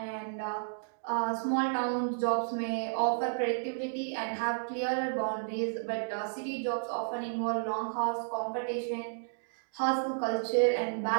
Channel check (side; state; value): left; silent; digital silence